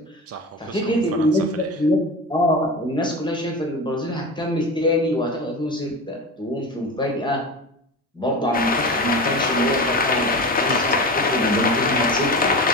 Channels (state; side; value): normal; both; correlation 0.27